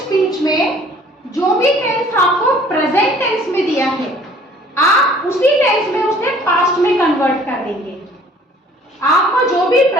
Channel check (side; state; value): both; normal; correlation 0.54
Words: में जो भी टेंस आपको प्रेजेंट टेंस में दिया है, आप उसी टेंस में उसे पास्ट में कन्वर्ट कर देंगे। आपको जो भी